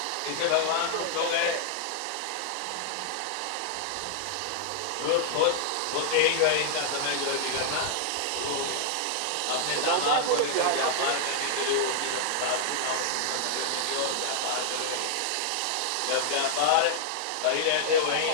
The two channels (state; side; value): different; both; correlation -0.01